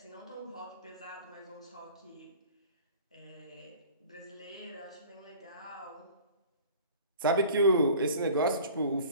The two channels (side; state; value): both; inverted; correlation -0.45